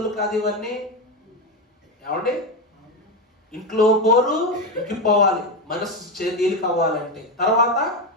కాదు ఇవన్నీ. ఏమండి? ఇంట్లో పోరు ఇంకిపోవాలి, మనస్సు తేలిక అవ్వాలంటే. తర్వాత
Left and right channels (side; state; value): both; normal; correlation 0.13